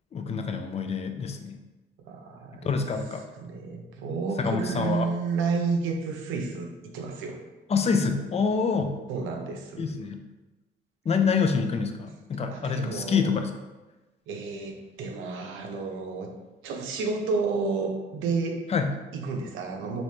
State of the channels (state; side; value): normal; both; correlation 0.52